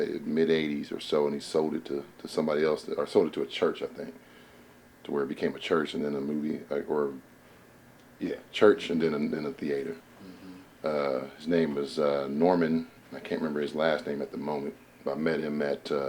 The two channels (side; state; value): both; identical; correlation 1.00